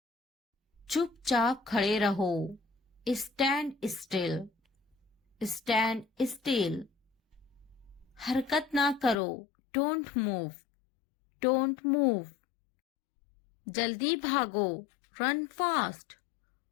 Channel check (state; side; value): drops out; right; at 9.2 s